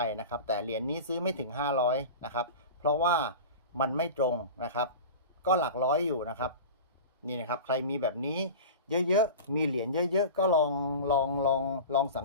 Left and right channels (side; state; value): both; inverted; correlation -0.32